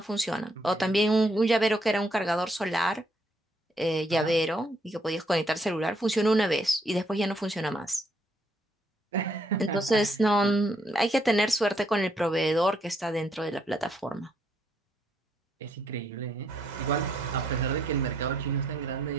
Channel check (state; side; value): normal; both; correlation 0.73